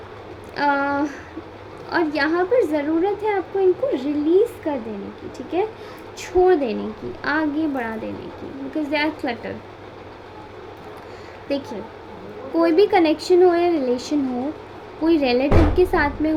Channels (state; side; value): identical; both; correlation 1.00